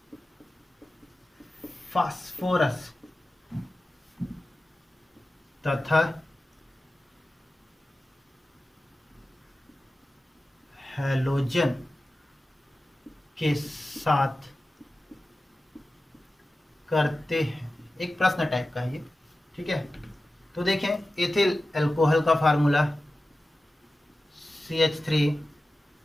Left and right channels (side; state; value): both; normal; correlation 0.94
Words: फास्फोरस तथा हैलोजन के साथ करते हैं। एक प्रश्न टाइप का है ये। ठीक है, तो देखें एथिल अल्कोहल का फार्मूला CH3